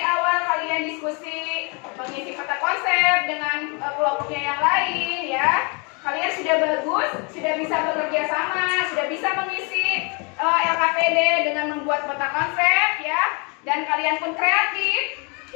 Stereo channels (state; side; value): quieter; right; 32.9 dB